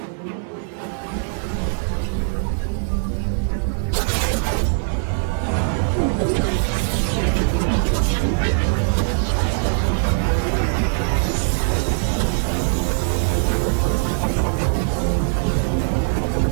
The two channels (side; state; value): left; silent; 65 dB below the other